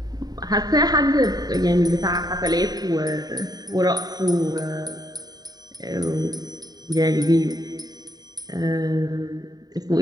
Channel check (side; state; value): left; late; 0.19 ms